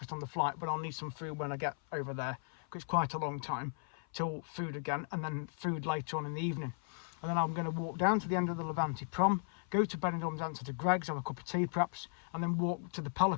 on the flight, but I'll need some food when I get over there, because it's quite a long time till food again, and then food later on in the evening. And then I'm going to walk down to the end of the Levante prom, go to Benidorm, answer to Greg's, have a cup of tea perhaps, and then walk to the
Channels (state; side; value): silent; right; 54 dB below the other